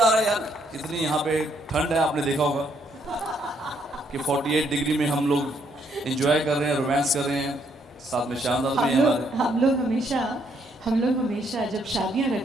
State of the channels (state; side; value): normal; both; correlation 0.71